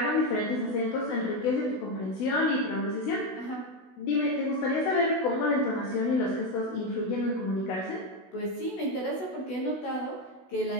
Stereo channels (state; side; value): late; right; 16 ms